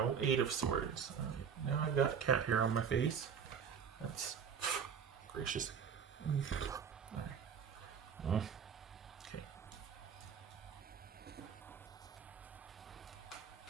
Eight of Swords. Now I've got a cat hair on my face. That's gracious. Okay.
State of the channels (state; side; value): quieter; left; 7.1 dB